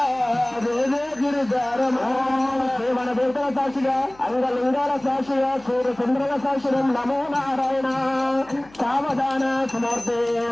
జయ జయ గిరిజా రమణ మన దేవతల సాక్షిగా అంగలింగాల సాక్షిగా సూర్య చంద్రుల సాక్షిరం నమో నారాయణ సావధాన సుమూర్తే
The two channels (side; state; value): left; noise; hum, 26 dB below the sound